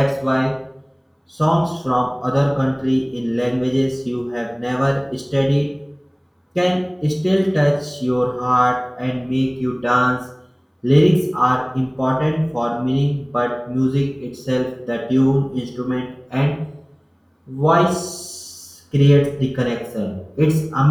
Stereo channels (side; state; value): both; identical; correlation 1.00